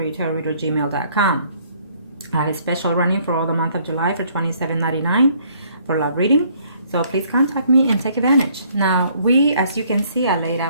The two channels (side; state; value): both; inverted; correlation -0.63